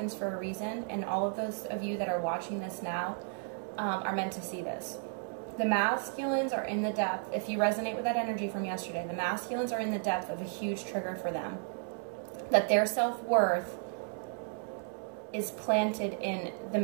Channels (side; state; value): left; silent; 55 dB below the other